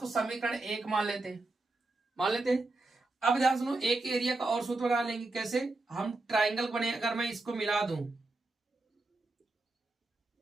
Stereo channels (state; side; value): quieter; left; 3.1 dB